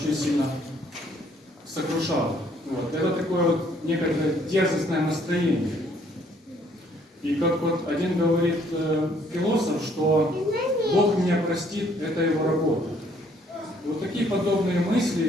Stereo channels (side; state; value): both; normal; correlation 0.64